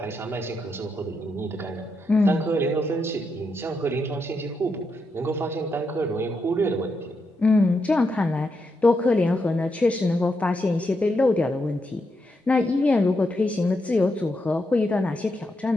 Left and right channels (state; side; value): normal; both; correlation 0.83